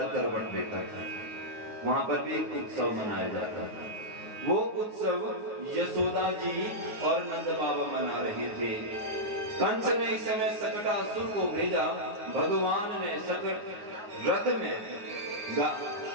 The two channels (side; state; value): left; late; 9.4 ms